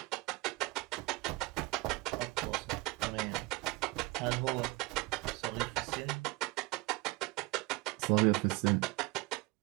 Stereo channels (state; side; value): quieter; left; 23.0 dB